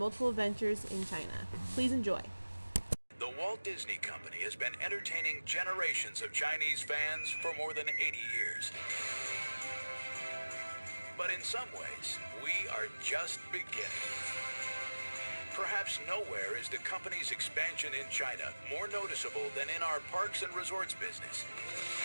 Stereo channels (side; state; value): both; inverted; correlation -1.00